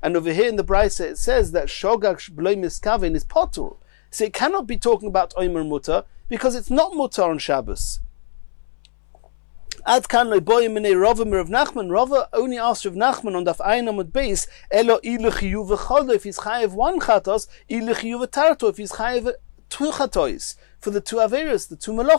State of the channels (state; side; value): silent; right; 66 dB below the other